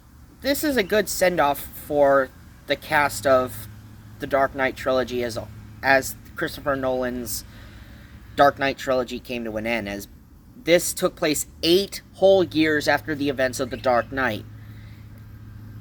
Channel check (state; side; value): identical; both; correlation 1.00